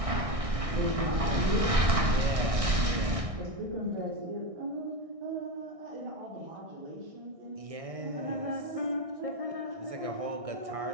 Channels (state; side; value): late; left; 1.6 ms